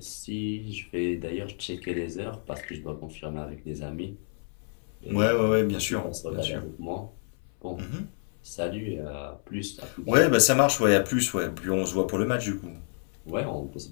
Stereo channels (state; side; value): silent; right; 59 dB below the other